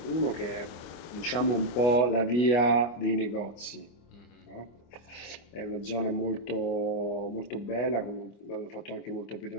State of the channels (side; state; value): right; late; 24 ms